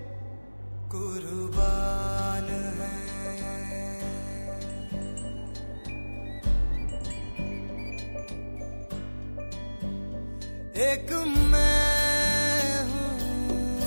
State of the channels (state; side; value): inverted; both; correlation -1.00